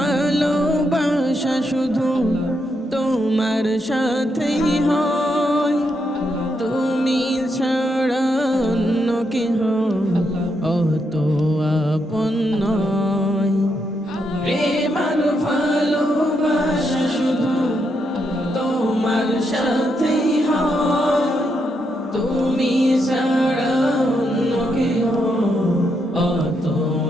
শুধু তোমার সাথেই হয়, তুমি ছাড়া অন্য কেহ অত আপন নয়। প্রেম আর ভালোবাসা শুধু তোমার সাথেই হয়, তুমি ছাড়া অন্য কেহ অত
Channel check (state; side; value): normal; both; correlation 0.80